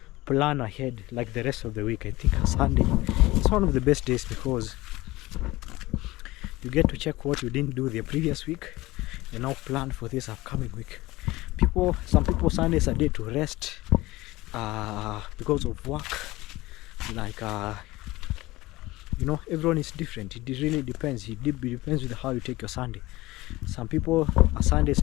plan ahead, like the rest of the week. I think a Sunday is one of the best days, because you get to check what you didn't do the previous week and now plan for this upcoming week. Some people, Sunday is a day to rest because of work. Like you know, everyone is different. It really depends. It depends with how you take your Sunday. Some people, a Sunday is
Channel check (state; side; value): quieter; right; 19.2 dB